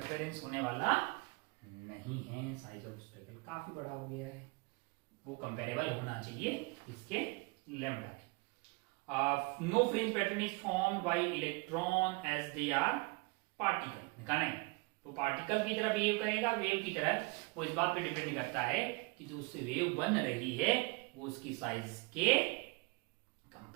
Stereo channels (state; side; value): quieter; left; 27.8 dB